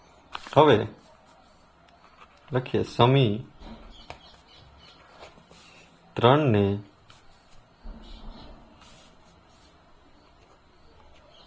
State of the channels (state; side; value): identical; both; correlation 1.00